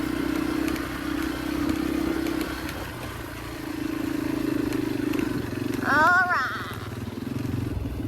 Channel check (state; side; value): identical; both; correlation 1.00